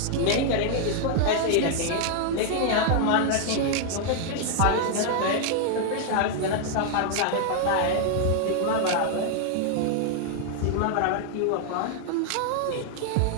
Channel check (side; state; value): both; different; correlation 0.00